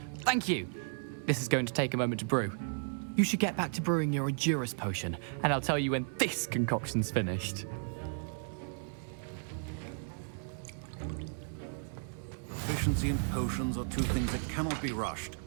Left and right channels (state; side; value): silent; left; digital silence